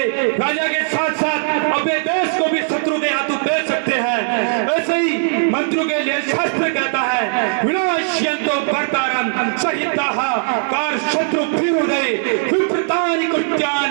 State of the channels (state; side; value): silent; left; digital silence